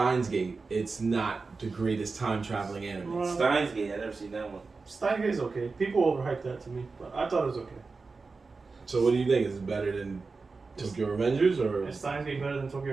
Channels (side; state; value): left; quieter; 4.2 dB